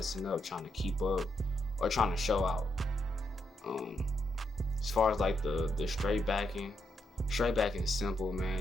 up trying to keep up or trying to show out. As far as like the straight backing is simple,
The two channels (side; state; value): both; normal; correlation 0.81